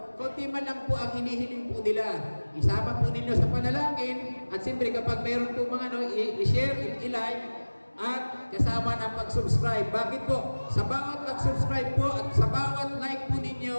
konti man lang po ang hinihiling po nila. Isama po ninyo sa panalangin at siyempre kapag mayroon po mga i-share, i-like, at kasama ng pag-subscribe. Bakit po? Sa bawat pag-subscribe po at sa bawat like po ninyo,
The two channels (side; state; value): both; inverted; correlation -1.00